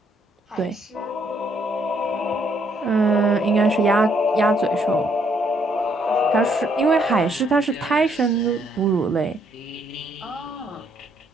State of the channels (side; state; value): both; normal; correlation 0.70